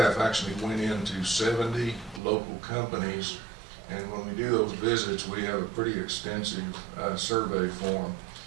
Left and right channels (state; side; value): drops out; left; at 2.2 s